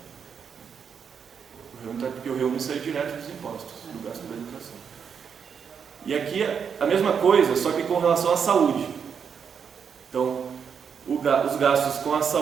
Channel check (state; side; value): quieter; left; 6.9 dB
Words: Porque o REUNI saiu direto dos impostos, do gasto da educação. E aqui a mesma coisa, só que com relação à saúde. Então, os gastos com a